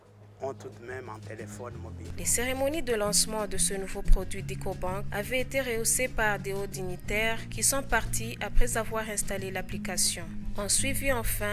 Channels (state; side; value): identical; both; correlation 1.00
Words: ont tout de même un téléphone mobile. Les cérémonies de lancement de ce nouveau produit d'EcoBank avaient été rehaussées par des hauts dignitaires qui sont partis après avoir installé l'application. On suivit